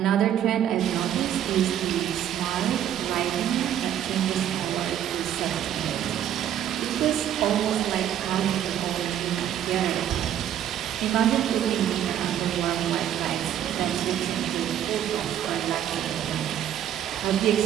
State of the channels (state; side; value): quieter; left; 10.5 dB